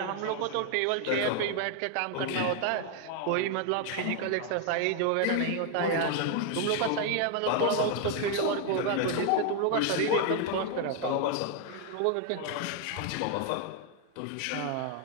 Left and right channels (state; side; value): different; both; correlation 0.00